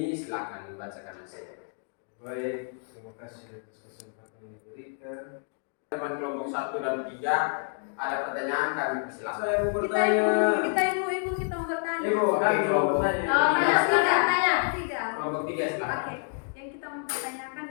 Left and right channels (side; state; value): right; silent; 59 dB below the other